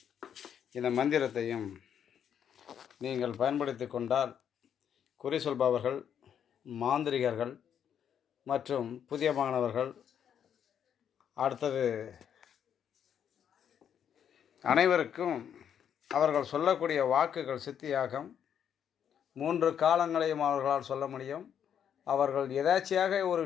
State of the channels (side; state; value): right; quieter; 8.7 dB